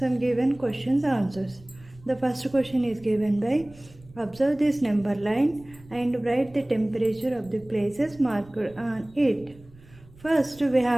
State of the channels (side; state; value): right; noise; rumble, 24 dB below the sound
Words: given questions answers. The first question is given by observe this number line and write the temperature of the places marked on it. First, we